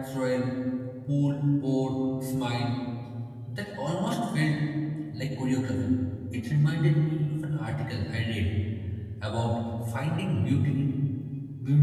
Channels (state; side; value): identical; both; correlation 1.00